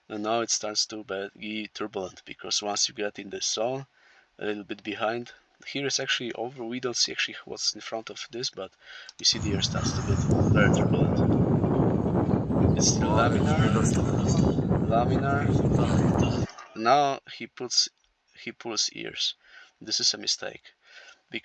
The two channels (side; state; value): both; identical; correlation 1.00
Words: And now it starts to be turbulent because once you get in the zone, a little bit behind. Here is actually over. We don't see actually what's in front of this, but we see the air starts to get very turbulent. It's still laminar. Now he pulls ears. This is a mistake